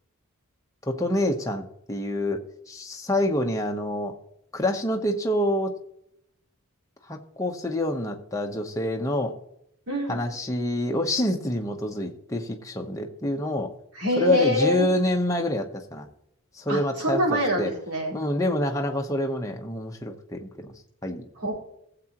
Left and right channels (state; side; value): normal; both; correlation 0.36